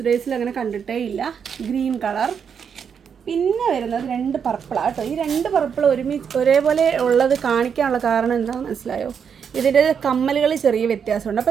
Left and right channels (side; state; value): left; quieter; 7.1 dB